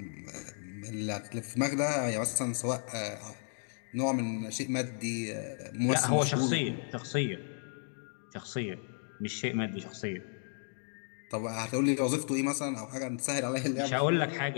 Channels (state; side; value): silent; right; 55 dB below the other